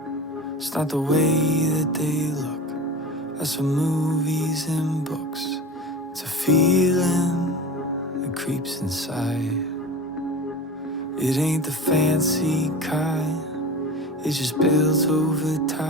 It's not the way that they look. That's from movies and books. It's a feeling that creeps inside. It ain't the fancy kind. It just builds over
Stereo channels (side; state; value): both; normal; correlation 0.32